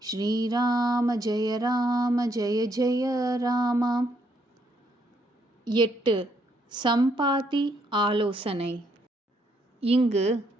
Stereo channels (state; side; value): normal; both; correlation 0.73